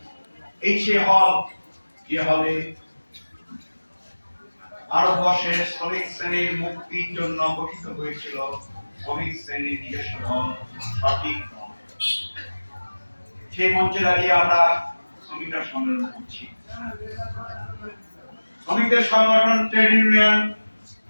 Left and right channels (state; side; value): inverted; both; correlation -1.00